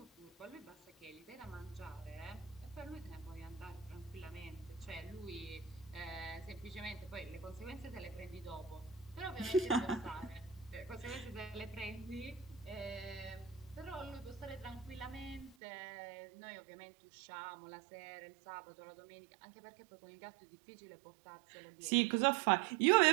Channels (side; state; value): left; drops out; at 15.6 s